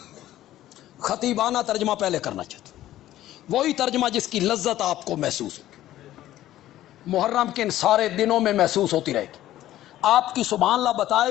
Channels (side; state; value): right; quieter; 13.8 dB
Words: خطیبانہ ترجمہ پہلے کرنا چاہتا ہوں، وہی ترجمہ جس کی لذت آپ کو محسوس ہوگی، محرم کے ان سارے دنوں میں محسوس ہوتی رہے گی۔ آپ کی سبحان اللہ بتائے